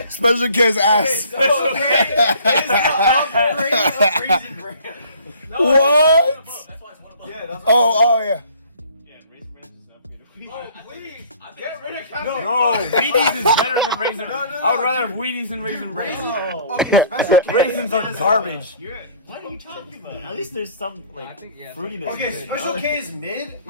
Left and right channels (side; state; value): both; inverted; correlation -0.54